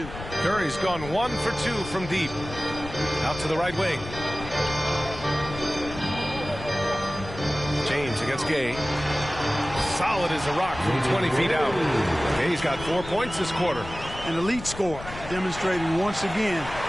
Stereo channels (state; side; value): noise; left; rumble, 12 dB below the sound